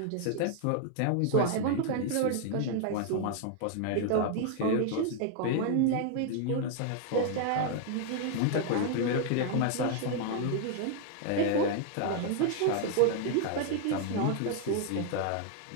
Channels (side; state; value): both; different; correlation 0.00